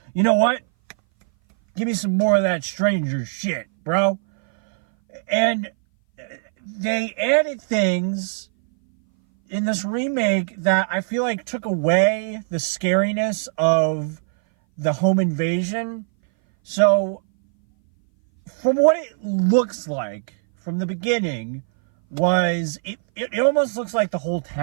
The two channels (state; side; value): silent; left; 59 dB below the other